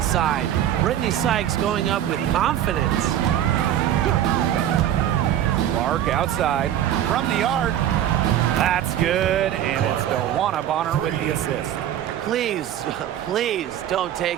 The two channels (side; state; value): left; quieter; 11.2 dB